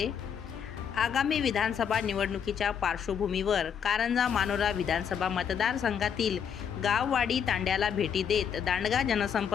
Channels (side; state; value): right; quieter; 7.7 dB